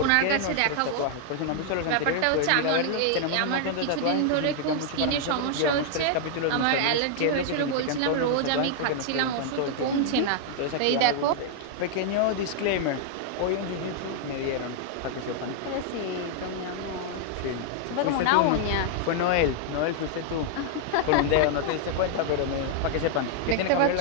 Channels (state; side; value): different; both; correlation 0.00